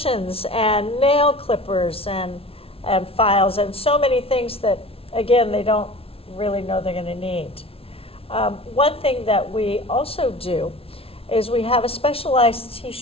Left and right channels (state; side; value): late; right; 0.27 ms